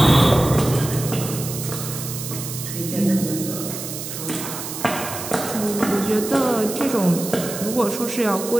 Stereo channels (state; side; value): noise; right; hiss, 8 dB below the sound